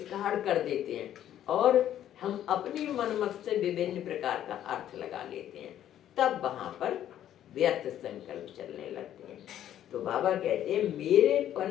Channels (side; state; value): right; quieter; 11.3 dB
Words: कर देते हैं और हम अपनी मनमत से विभिन्न प्रकार का अर्थ लगा लेते हैं, तब वहां पर व्यर्थ संकल्प चलने लगते हैं। तो बाबा कहते हैं मेरे